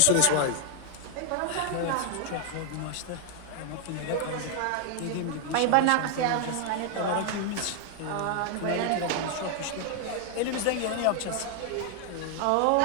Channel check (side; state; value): both; different; correlation 0.00